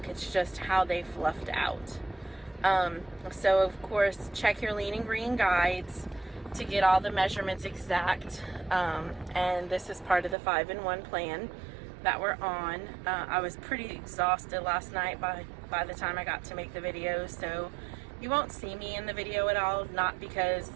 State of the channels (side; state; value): left; drops out; at 10.4 s